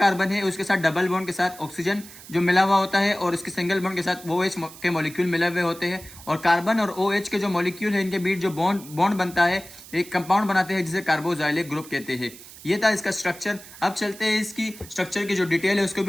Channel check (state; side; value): noise; right; hiss, 18 dB below the sound